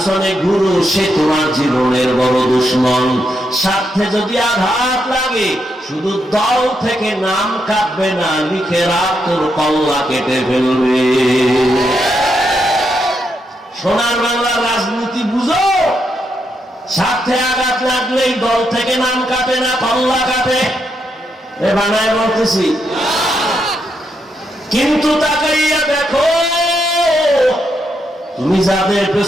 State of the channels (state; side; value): normal; both; correlation 0.80